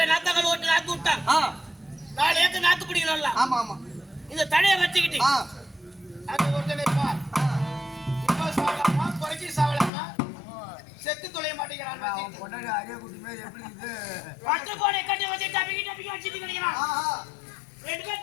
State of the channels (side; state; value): right; drops out; at 9.9 s